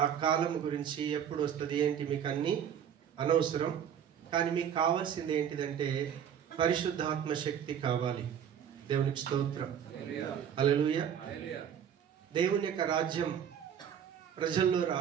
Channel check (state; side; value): quieter; left; 8.7 dB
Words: ఆ కాలం గురించి ఎప్పుడు వస్తుంది ఏంటి మీకు అన్ని అనవసరం, కానీ మీకు కావాల్సింది ఏంటిదంటే పరిశుద్ధాత్మ శక్తి కావాలి. దేవునికి స్తోత్రం. హల్లెలూయా. దేవుని యొక్క రాజ్యం ప్రజల్లో